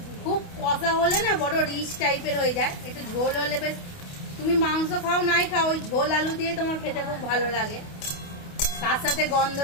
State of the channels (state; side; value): late; right; 28 ms